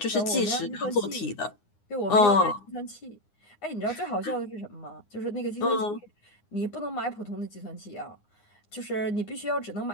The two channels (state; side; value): late; right; 9.7 ms